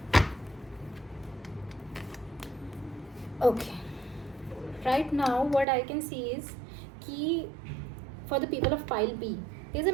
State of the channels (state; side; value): drops out; left; at 5.7 s